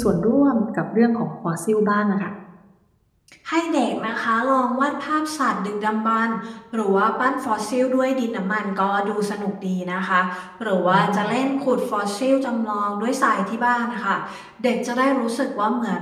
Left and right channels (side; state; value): both; identical; correlation 1.00